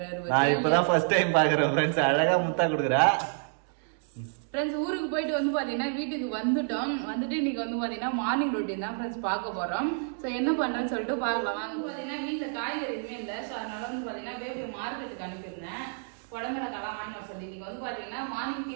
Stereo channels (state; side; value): silent; left; 58 dB below the other